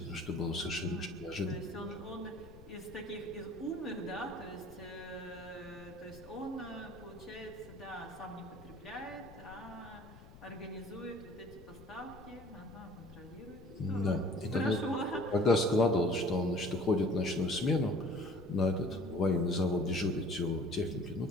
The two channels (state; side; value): noise; left; rumble, 18 dB below the sound